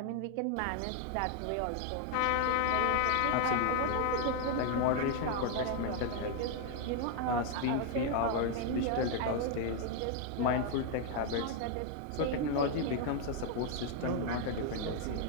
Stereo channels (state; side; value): different; both; correlation 0.00